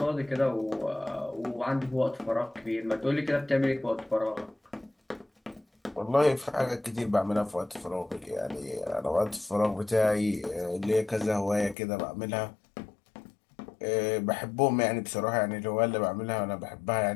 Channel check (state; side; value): drops out; right; at 11.8 s